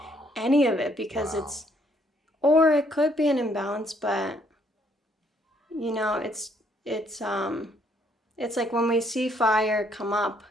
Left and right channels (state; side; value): normal; both; correlation 0.68